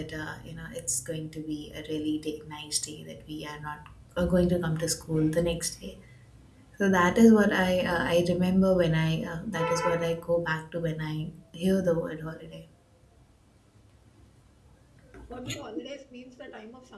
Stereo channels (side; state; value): both; identical; correlation 1.00